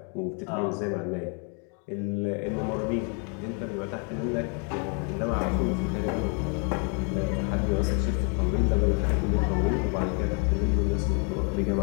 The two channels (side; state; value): right; quieter; 38.7 dB